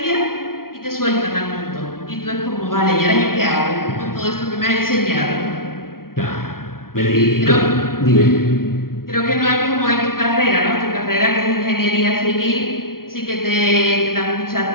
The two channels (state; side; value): late; right; 0.93 ms